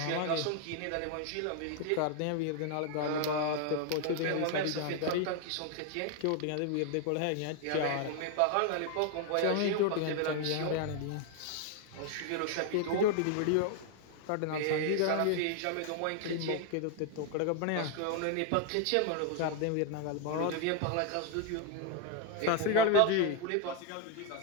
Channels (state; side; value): different; both; correlation 0.00